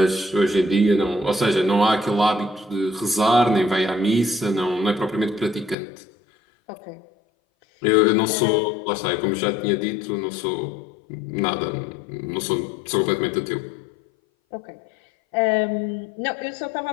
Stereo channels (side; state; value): right; drops out; at 5.8 s